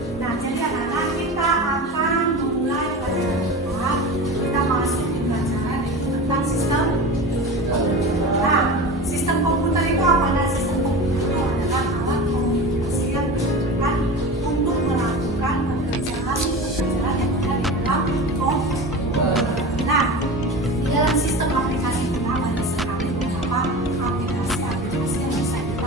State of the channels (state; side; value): normal; both; correlation 0.30